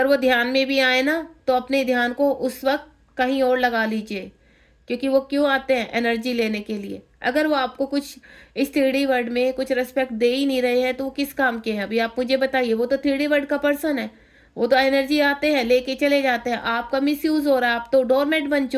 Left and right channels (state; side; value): identical; both; correlation 1.00